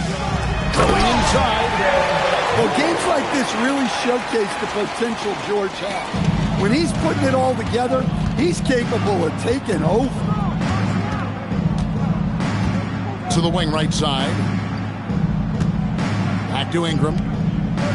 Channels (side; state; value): both; identical; correlation 1.00